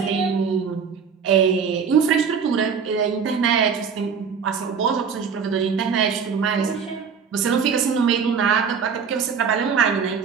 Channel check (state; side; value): quieter; left; 6.3 dB